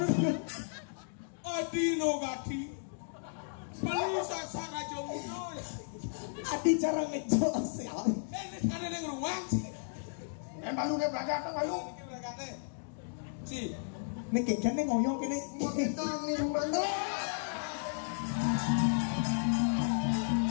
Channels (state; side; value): silent; right; digital silence